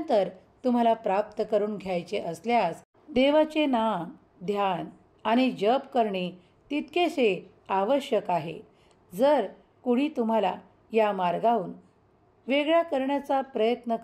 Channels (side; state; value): both; identical; correlation 1.00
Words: तुम्हाला प्राप्त करून घ्यायचे असल्यास देवाचे नाम, ध्यान आणि जप करणे तितकेसे आवश्यक आहे. जर कुणी तुम्हाला या मार्गाहून वेगळा करण्याचा प्रयत्न